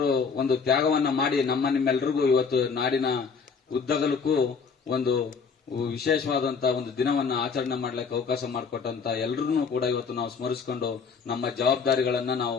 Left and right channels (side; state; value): right; quieter; 5.6 dB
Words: ಒಂದು ತ್ಯಾಗವನ್ನ ಮಾಡಿ ನಿಮ್ಮೆಲ್ಲರಿಗೂ ಇವತ್ತು ನಾಡಿನ ಉದ್ದಗಲಕ್ಕೂ ಒಂದು ವಿಶೇಷವಾದಂತಹ ಒಂದು ದಿನವನ್ನ ಆಚರಣೆ ಮಾಡ್ಲಿಕ್ಕೆ ಅವಕಾಶ ಮಾಡಿಕೊಟ್ಟಂತ ಎಲ್ಲರನ್ನೂ ಕೂಡ ಇವತ್ತು ನಾವು ಸ್ಮರಿಸಿಕೊಂಡು ನಮ್ಮ ಜವಾಬ್ದಾರಿಗಳನ್ನ